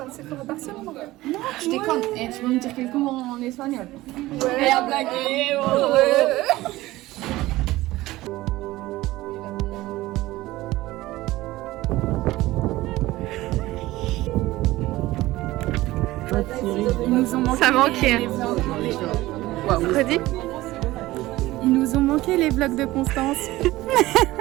le Sephora Barcelone. Non, tu déconnes. Et tu peux me dire quelques mots en espagnol? Ouais. Et en blague. Ils nous ont manqué. Ça manquait. Wow. Redis? Ils nous ont manqué les vlogs de Constance.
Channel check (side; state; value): left; quieter; 17.7 dB